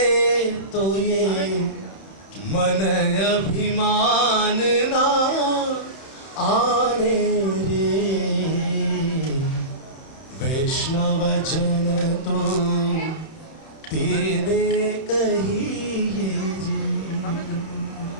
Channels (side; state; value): right; late; 31 ms